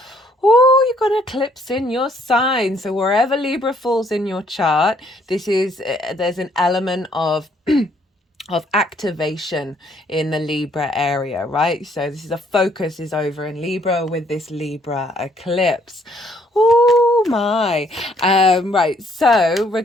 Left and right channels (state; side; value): normal; both; correlation 0.66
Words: Oh, you've got an eclipse in your sign. So wherever Libra falls in your chart, there's an element of of activation in the Libra area, right? So this is a focus is over in Libra with this Libra eclipse. Oh my. Right. So